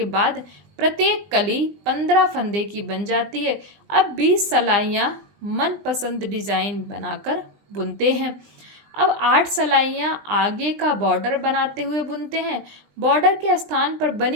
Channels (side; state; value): left; late; 20 ms